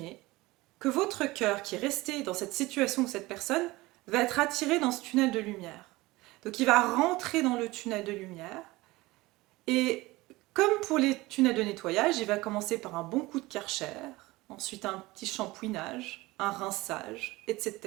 que votre cœur qui est resté dans cette situation ou cette personne va être attiré dans ce tunnel de lumière. Donc il va rentrer dans le tunnel de lumière et comme pour les tunnels de nettoyage, il va commencer par un bon coup de Karcher, ensuite un petit shampouinage, un rinçage,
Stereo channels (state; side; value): quieter; left; 20.4 dB